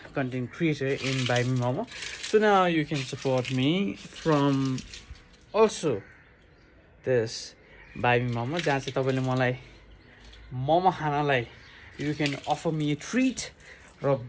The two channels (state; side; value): identical; both; correlation 1.00